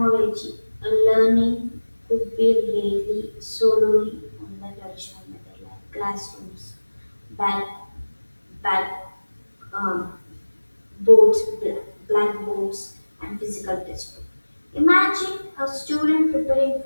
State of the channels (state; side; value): inverted; both; correlation -1.00